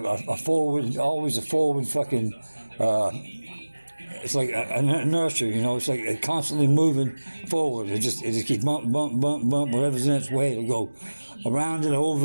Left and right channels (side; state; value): both; inverted; correlation -1.00